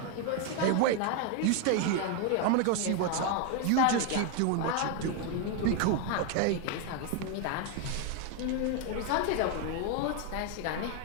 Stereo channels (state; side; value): different; both; correlation 0.01